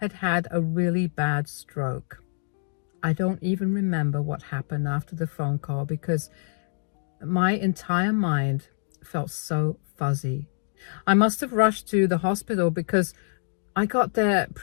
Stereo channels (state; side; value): silent; right; digital silence